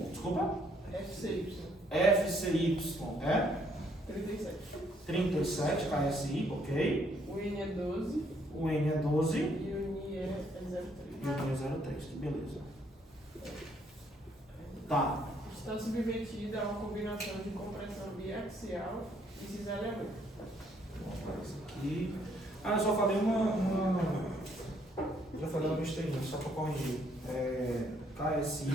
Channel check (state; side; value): normal; both; correlation 0.68